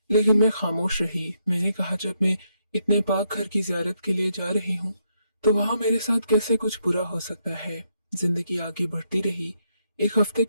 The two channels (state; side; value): inverted; both; correlation -0.77